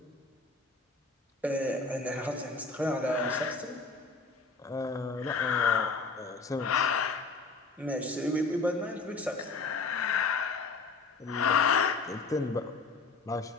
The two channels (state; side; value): quieter; right; 4.1 dB